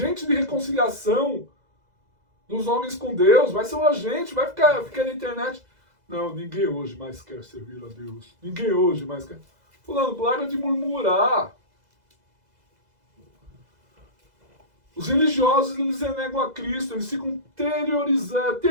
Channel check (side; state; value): left; late; 2.0 ms